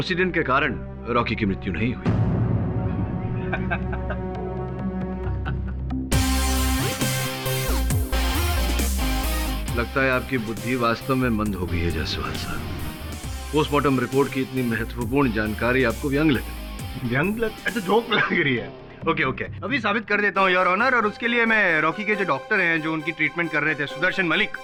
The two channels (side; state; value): both; identical; correlation 1.00